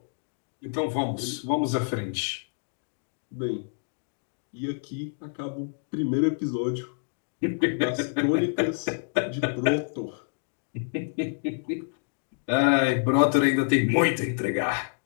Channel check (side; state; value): right; silent; digital silence